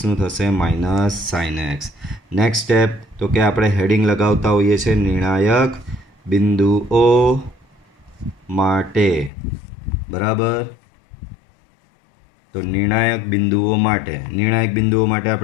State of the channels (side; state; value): right; drops out; at 9.3 s